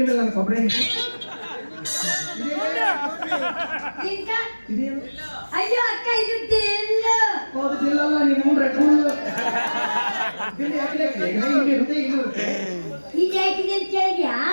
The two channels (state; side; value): inverted; both; correlation -1.00